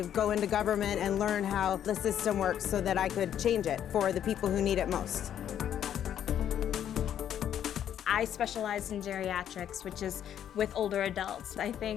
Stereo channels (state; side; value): quieter; right; 10.0 dB